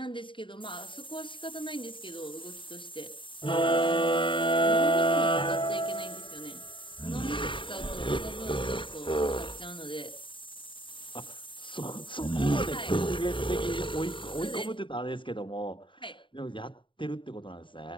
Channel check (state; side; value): late; right; 0.24 ms